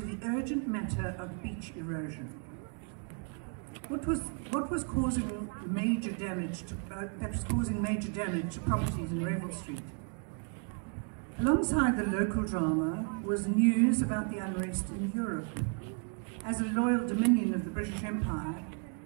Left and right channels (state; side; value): quieter; left; 39.5 dB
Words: urgent matter of beach erosion. What was causing major damage to properties in Revel Street? Alongside the local drama was news about the unrest in Europe. As a loyal dominion of the British Empire,